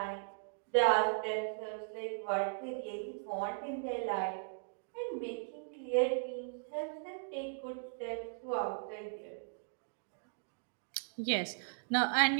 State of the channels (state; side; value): silent; left; digital silence